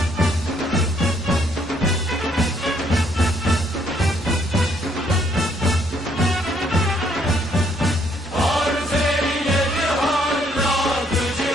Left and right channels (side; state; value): both; normal; correlation 0.68